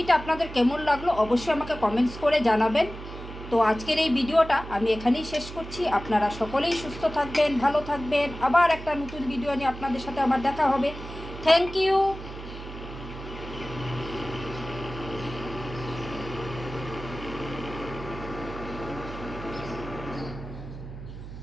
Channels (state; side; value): noise; right; hum, 12 dB below the sound